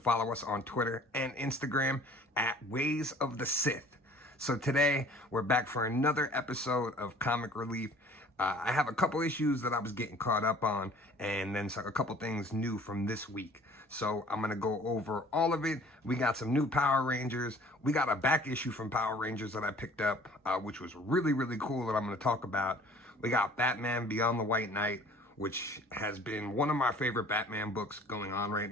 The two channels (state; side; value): normal; both; correlation 0.51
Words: us on Twitter and Instagram at Ways of the Sith. So today, we're back for another episode of Comic Relief. I have a couple issues that I was getting caught up on, and then a couple things new from this week. So I'm going to go over all of it. We got some new Power Rangers. We got a back issue from Power Rangers that I picked up, which was really, really cool that I'm going to talk about. We got Batman Beyond the White Knight, which has been one of my favorite Batman books going on right